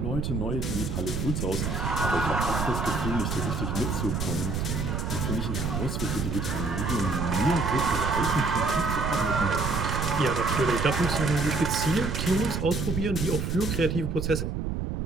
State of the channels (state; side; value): noise; right; rumble, 2 dB below the sound